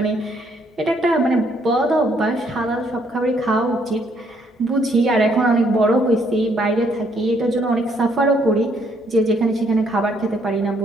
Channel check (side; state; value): both; normal; correlation 0.69